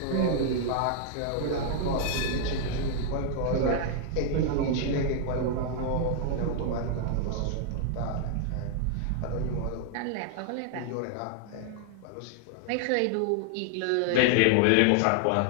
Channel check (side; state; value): both; different; correlation 0.00